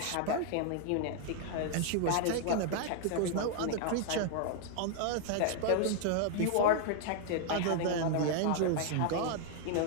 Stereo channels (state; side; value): different; both; correlation 0.00